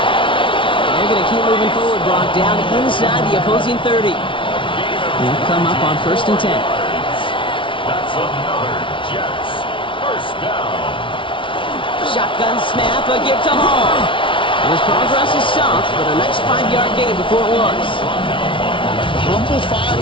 And they're going to keep moving forward, Brock, down inside the opposing 30. They'll come up on first and 10. That's another Jets first down. Shotgun snap, a give to Hall. And his progress is stopped, but a nice 5-yard gain before it was. Humble 5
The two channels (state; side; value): late; right; 0.25 ms